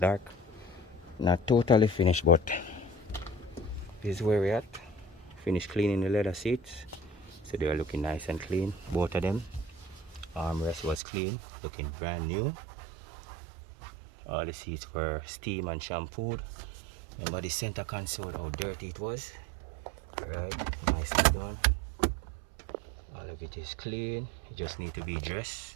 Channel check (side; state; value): left; drops out; at 11.0 s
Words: Not totally finished, but this is where we're at. Finished cleaning the leather seats, so they are looking nice and clean, both of them. Armrest was clean, looking brand new. All the seats were steamed and shampooed. Remember the center console, how dirty it was. Alright, nicely done. All of it is clean. You just need to be